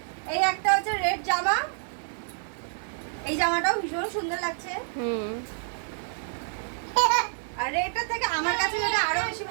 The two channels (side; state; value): left; silent; digital silence